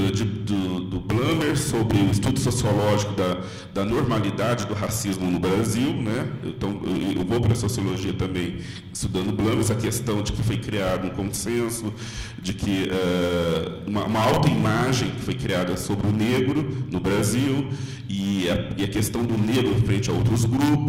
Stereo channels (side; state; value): both; identical; correlation 1.00